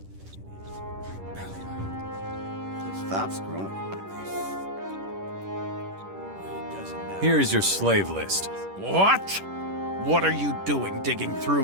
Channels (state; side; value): late; left; 10 ms